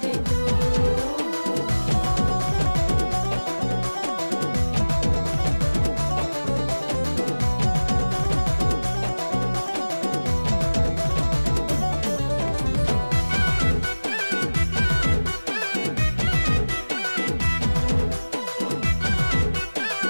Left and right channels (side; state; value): both; inverted; correlation -1.00